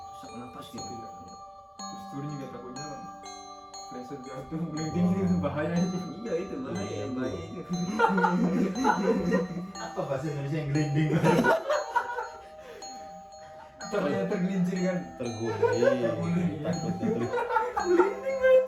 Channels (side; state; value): both; identical; correlation 1.00